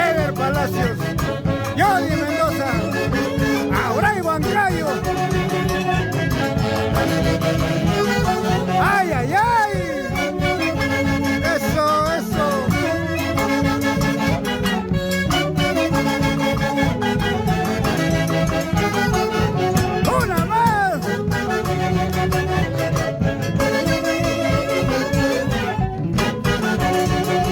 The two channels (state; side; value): identical; both; correlation 1.00